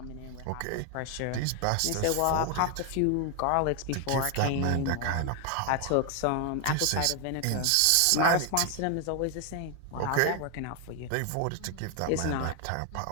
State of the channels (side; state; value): both; different; correlation 0.00